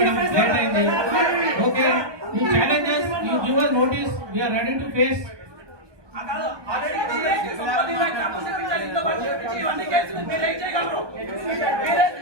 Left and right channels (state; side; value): late; left; 1.2 ms